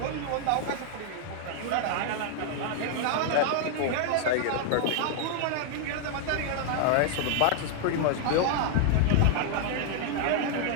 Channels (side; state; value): both; different; correlation 0.00